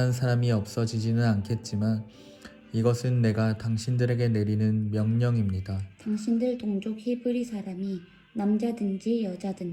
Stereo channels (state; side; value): identical; both; correlation 1.00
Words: 사람이 없어지지는 않겠지만 이것은 내가 당신들에게 내리는 명령입니다. 당신들 동족 히브리 사람이 남자든지